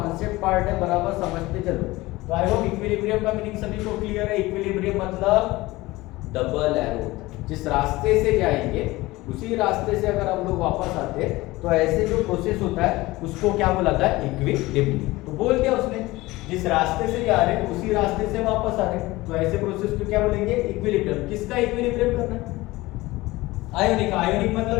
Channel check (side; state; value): right; quieter; 19.8 dB